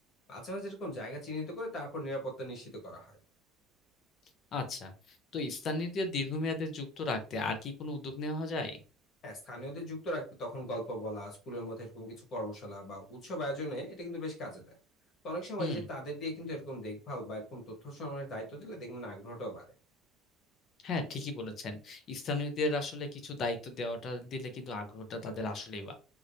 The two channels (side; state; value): both; normal; correlation 0.36